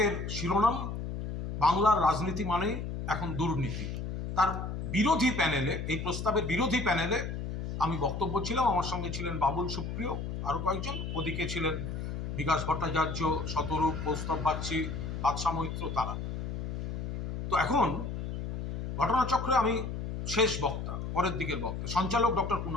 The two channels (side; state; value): left; noise; hum, 5 dB below the sound